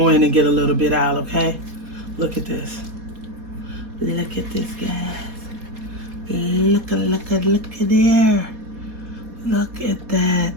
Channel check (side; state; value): left; late; 4.2 ms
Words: in and get a little bit out, okay? Look at this. Look at this, guys. Look at there. Look at